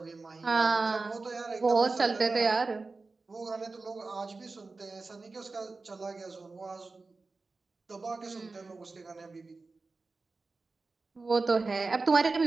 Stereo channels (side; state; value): left; quieter; 3.8 dB